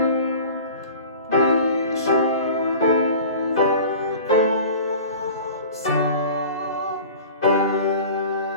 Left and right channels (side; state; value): both; inverted; correlation -0.40